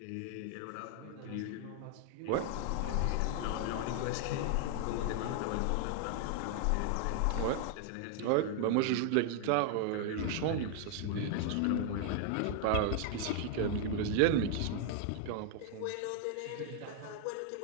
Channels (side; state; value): both; different; correlation 0.00